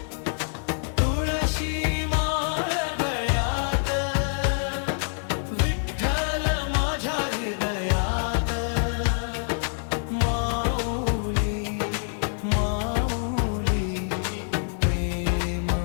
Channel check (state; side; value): silent; right; 61 dB below the other